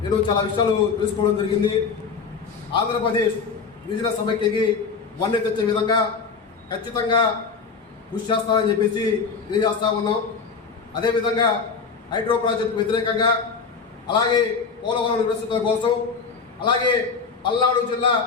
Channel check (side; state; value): right; quieter; 5.2 dB